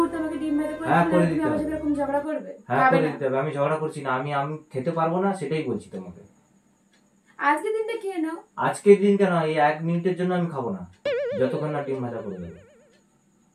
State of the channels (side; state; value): both; identical; correlation 1.00